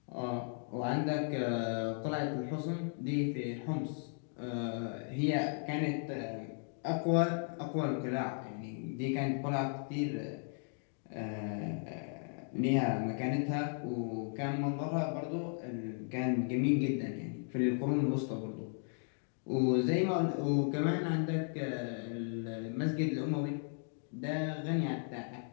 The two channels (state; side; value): silent; right; 54 dB below the other